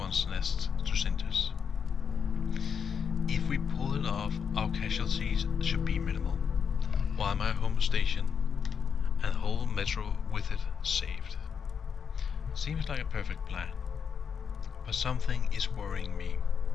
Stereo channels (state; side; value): quieter; right; 6.8 dB